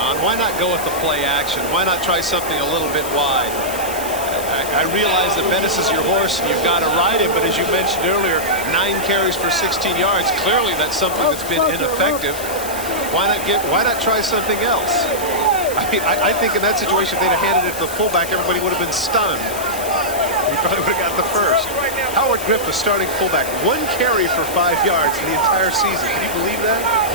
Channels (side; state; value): left; noise; hiss, 10 dB below the sound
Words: Why not go with the play action? Why not try something a little bit wide? I realize that Bettis is your horse, and you've got to ride him, but as you mentioned earlier, 9 carries for 16 yards. Clearly, that's something that's been ineffective. Why not try something else? I think in that situation, if they'd have handed it to the fullback, everybody would have been stunned. He probably would have got the first. Howard Griffith, starting fullback, 1 carry for 5 yards in the entire season. Can you believe that?